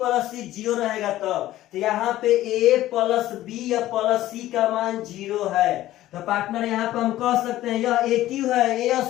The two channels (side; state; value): right; quieter; 14.7 dB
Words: C 0 रहेगा तब। तो यहाँ पे ए प्लस बी या प्लस सी का मान 0 है। तो पार्टनर यहाँ पे हम कह सकते हैं यह ए क्यू है, ए